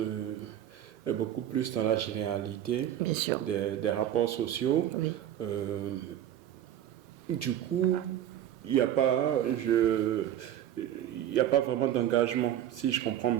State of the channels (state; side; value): quieter; left; 11.2 dB